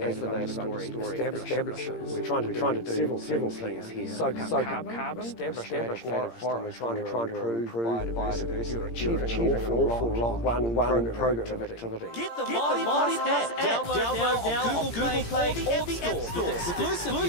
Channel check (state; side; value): late; right; 17 ms